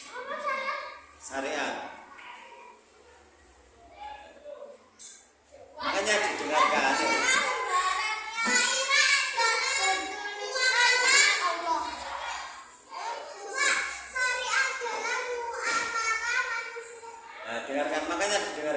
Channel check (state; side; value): identical; both; correlation 1.00